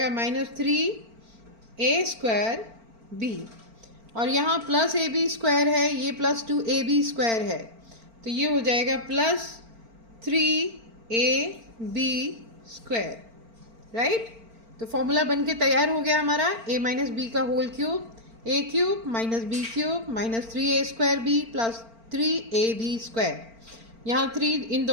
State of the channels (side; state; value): left; late; 4.4 ms